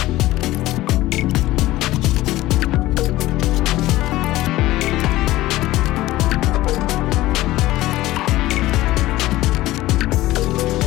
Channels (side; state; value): right; quieter; 16.8 dB